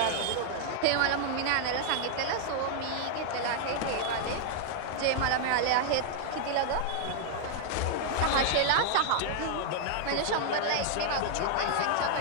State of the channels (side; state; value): both; different; correlation 0.00